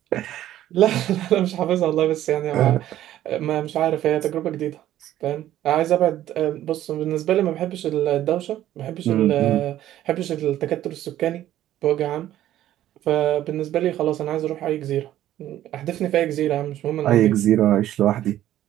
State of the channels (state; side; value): quieter; left; 12.9 dB